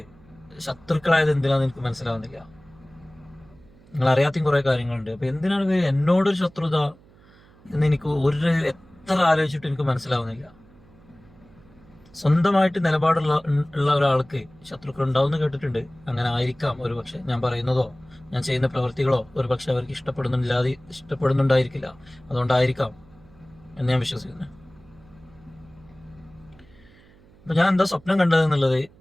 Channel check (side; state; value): right; noise; hum, 27 dB below the sound